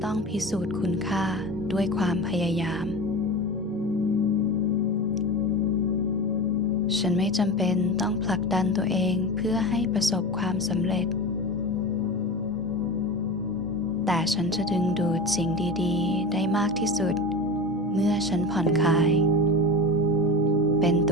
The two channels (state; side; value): normal; both; correlation 0.29